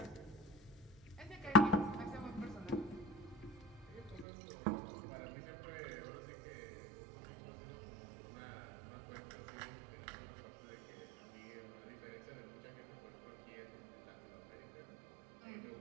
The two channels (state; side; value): drops out; left; at 4.2 s